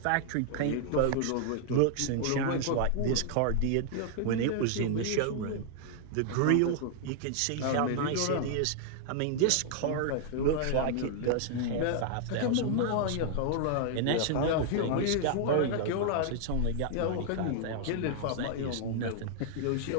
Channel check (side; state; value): both; different; correlation -0.01